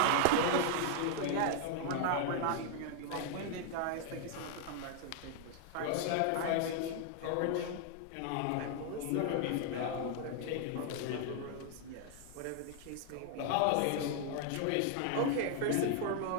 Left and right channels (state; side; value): different; both; correlation 0.00